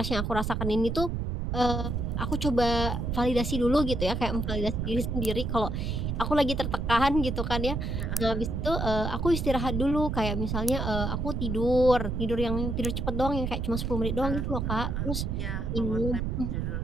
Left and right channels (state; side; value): noise; right; rumble, 1 dB below the sound